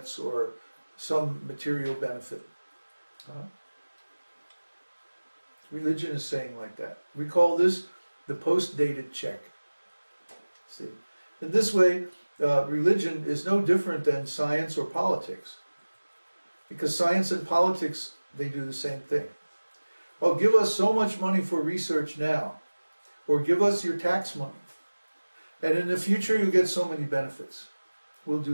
or some material benefit. Religion is saying like that. We call this the post-dated check. See, in this way, religion is no different than science or politics, because science and politics, they do the same thing. Oh, give us so much money for research now, or give us your tax money, and in the future you'll get so many benefits. We'll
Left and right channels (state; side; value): inverted; both; correlation -1.00